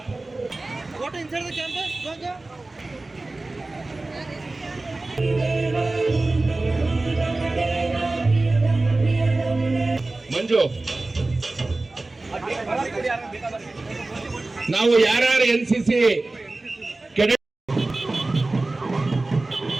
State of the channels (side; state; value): left; quieter; 3.1 dB